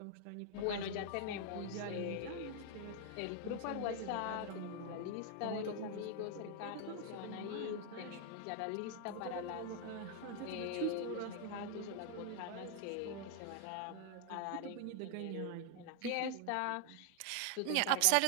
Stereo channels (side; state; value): both; different; correlation 0.00